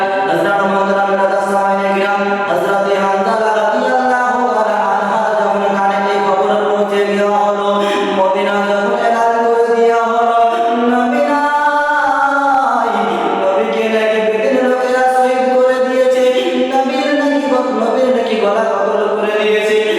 হযরত মুহতারাম রাদাস সামাইনে গিরাম হযরত হানজালা রাদিয়াল্লাহু তাআলা আনহা যখন কানে এই খবর পৌঁছে দেওয়া হলো, মদিনা যখন এলান করে দেওয়া হলো নবী নাই, নবীকে নাকি বেদিন লোকেরা শহীদ করে দিয়েছে, নবীর নাকি গলা কতল করে দিয়েছে।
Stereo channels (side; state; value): both; identical; correlation 1.00